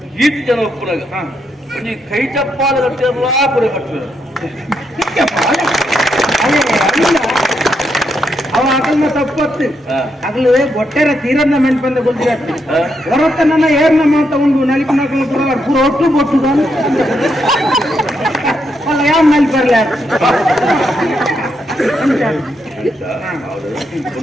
ಈತ ಜನ ಒಪ್ಪನಾಗ ಒಂದು ಕೈ ಚಪ್ಪಾಲ ಕಟ್ಟಿರಲ್ಲ ಪುರ ಕಟ್ಟಿದ್ರು ಅವ ಅಗಲ್ನ ತಪ್ಪತ್ತು ಅಗಲು ಒಟ್ಟೆರ ತೀರನ್ನ ಮೆಂಟ್ ಬಂದ ಗೊತ್ತಿರತ್ತೆ ಹೊರತನ ಏರ್ನ ತಗೊಂಡು ನಲಿಪ ನಕಲು ಪೂರ ಒಟ್ಟು ಬೊಟ್ಟು ಅಲ್ಲ ಯಾವ ನಲ್ಲಿ ಬರ್ಲ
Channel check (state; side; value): normal; both; correlation 0.80